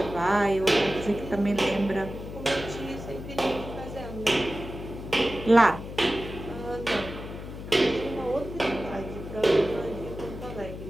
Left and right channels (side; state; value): left; noise; hum, 10 dB below the sound